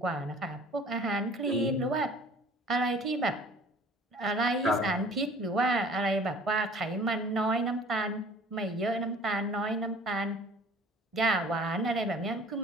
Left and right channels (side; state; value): both; normal; correlation 0.49